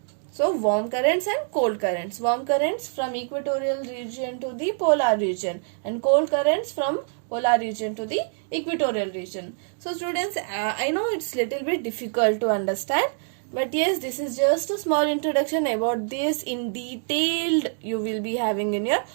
So warm currents and cold currents. Warm currents from equatorial region to the polar region, and cold currents from polar region to the equatorial region. So students, I know it's little bit difficult to understand, but yes, this is just a small introduction. About this in detailed you will be having in your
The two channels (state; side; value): silent; left; digital silence